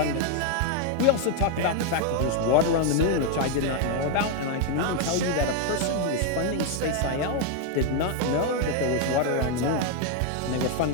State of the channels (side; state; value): both; different; correlation 0.01